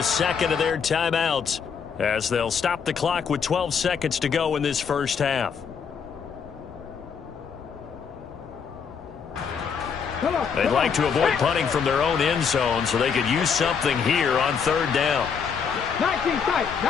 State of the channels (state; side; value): quieter; right; 6.5 dB